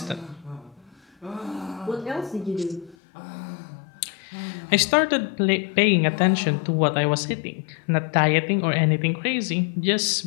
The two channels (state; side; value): drops out; right; at 3.0 s